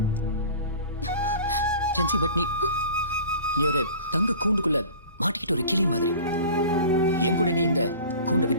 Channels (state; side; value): inverted; both; correlation -0.41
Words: ஜென்சி, பட் நீ ஒரு தங்க கூண்டுக்குள்ள மாட்டிக்கிட்டு ஒரு கிளி மாதிரி. என் கூட நீ இந்த கூண்டை